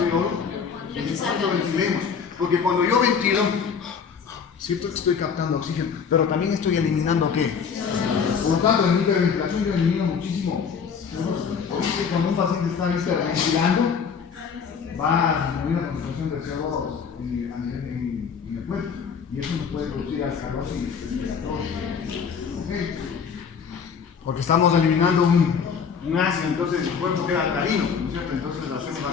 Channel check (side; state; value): right; quieter; 6.4 dB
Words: y de cuánto ventilemos. Porque cuando yo ventilo, cierto que estoy captando oxígeno, pero también estoy eliminando ¿qué? Por lo tanto, en mi hiperventilación yo elimino muchísimo. Por eso cuando un paciente está hiperventilando, va a disminuir la concentración de CO2 en el cuerpo. Y eso nos puede producir alcalosis respiratoria. ¿Okay? Porque estamos eliminando un ácido, entonces el cuerpo queda alcalino, ¿no es cierto? Entonces hacemos